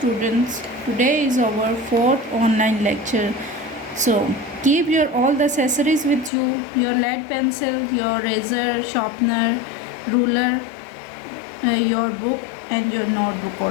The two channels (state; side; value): drops out; right; at 6.3 s